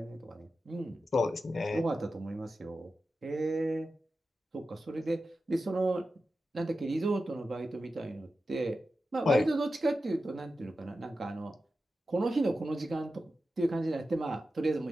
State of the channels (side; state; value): both; normal; correlation 0.92